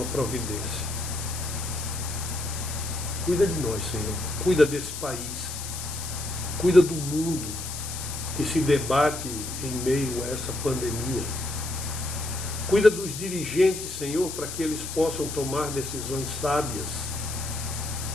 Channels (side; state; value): left; noise; hiss, 7 dB below the sound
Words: providência. Cuida de nós, Senhor. Cuida desse país. Cuida do mundo que se debate em meio a essa pandemia. Cuida dos dirigentes, Senhor, para que eles possam tomar decisões sábias.